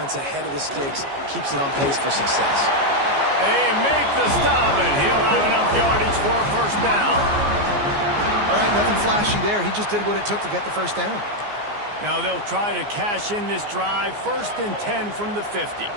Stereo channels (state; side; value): late; left; 14 ms